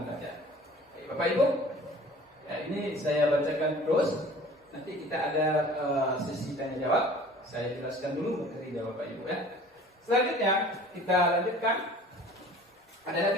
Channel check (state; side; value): normal; both; correlation 0.47